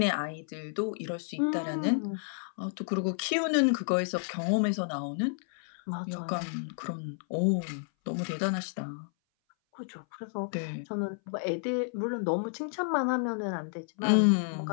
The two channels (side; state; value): right; silent; 57 dB below the other